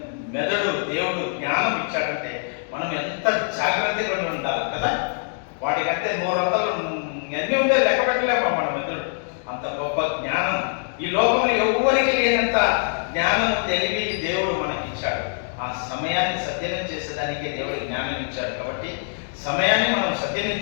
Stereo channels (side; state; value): right; silent; digital silence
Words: మెదడు దేవుడు జ్ఞానం ఇచ్చాడంటే మనం ఎంత జాగ్రత్తగా ఉండాలి కదా. వాటికంటే 100 అన్నీ ఉంటే లెక్క పెట్టలేమా మన మెదడు. అంత గొప్ప జ్ఞానం ఈ లోకంలో ఎవరికి లేనంత జ్ఞానం, తెలివి దేవుడు మనకి ఇచ్చాడు. ఆ సమయాన్ని సద్వినియోగం చేసేదానికి దేవుడు జ్ఞానం ఇచ్చాడు. కాబట్టి సమయాన్ని మనం సద్వినియోగం